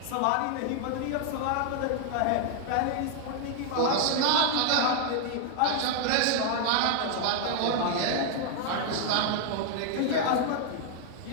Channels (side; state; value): both; different; correlation 0.00